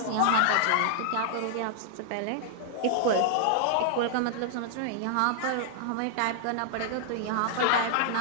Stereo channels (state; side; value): different; both; correlation -0.01